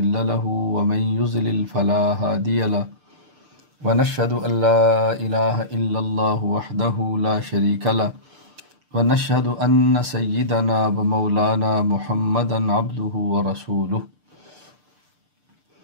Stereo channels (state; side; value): late; left; 6.7 ms